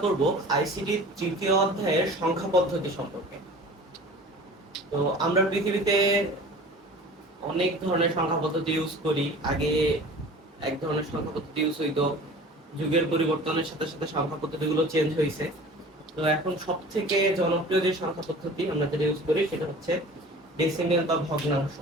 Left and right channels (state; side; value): normal; both; correlation 0.42